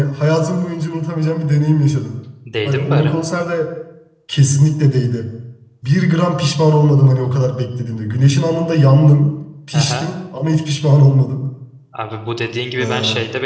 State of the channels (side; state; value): both; identical; correlation 1.00